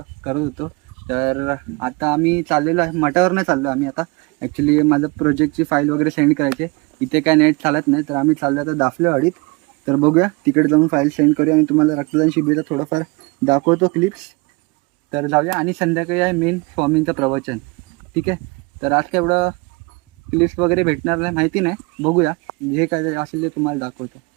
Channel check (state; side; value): quieter; left; 27.3 dB